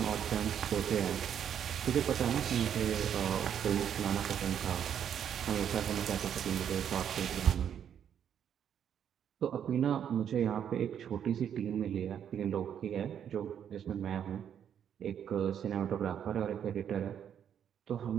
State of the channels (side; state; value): left; quieter; 8.9 dB